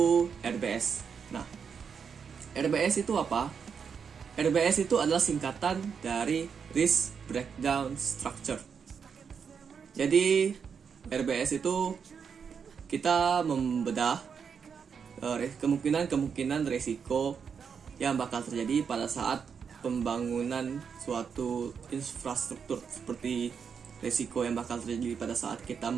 RBS. Nah, RBS itu apa? RBS itu adalah singkatan dari Risk Breakdown Structure. Jadi RBS itu kita membedah kemungkinan resiko yang bakal terjadi pada saat pembangunan suatu infrastruktur, seperti resiko yang bakal terjadi pada saat kita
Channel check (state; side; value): quieter; left; 6.5 dB